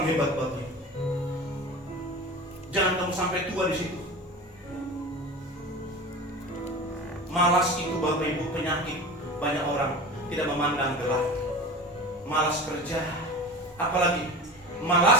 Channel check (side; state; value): both; normal; correlation 0.33